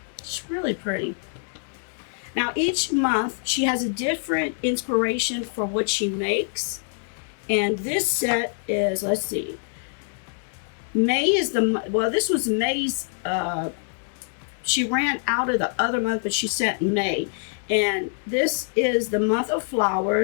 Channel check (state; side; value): silent; right; 62 dB below the other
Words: It's really pretty. Now, each month, she has a different inspiration for what she makes. And this set is, let's see. May is this was May's, she ran out of the other month, but she sent May. And this is the month of